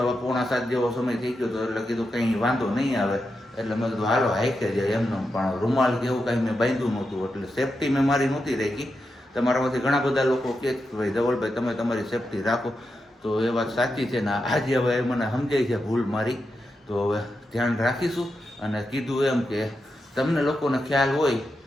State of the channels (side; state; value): both; normal; correlation 0.87